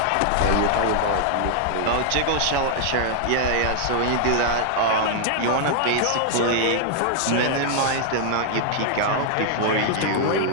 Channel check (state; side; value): different; both; correlation -0.01